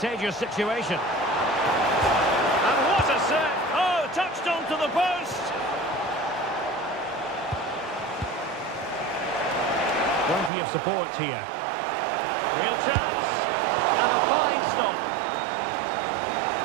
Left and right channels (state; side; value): drops out; left; at 10.5 s